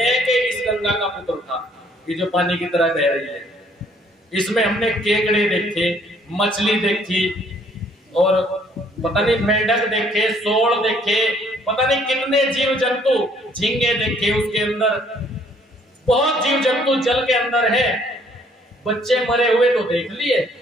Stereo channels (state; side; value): normal; both; correlation 0.62